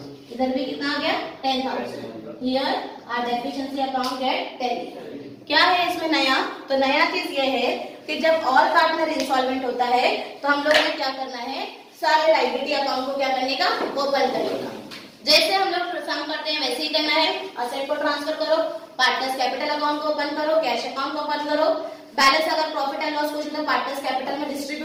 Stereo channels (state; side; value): identical; both; correlation 1.00